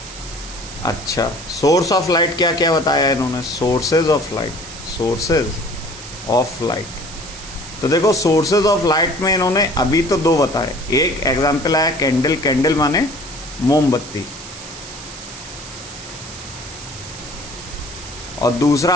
अच्छा, सोर्स ऑफ लाइट क्या क्या बताया इन्होंने? Sources of light, sources of light. तो देखो सोर्सेज ऑफ लाइट में इन्होंने अभी तो दो बताए। एक एग्जाम्पल आया कैंडल, कैंडल माने मोमबत्ती, और दूसरा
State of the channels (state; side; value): noise; right; hiss, 14 dB below the sound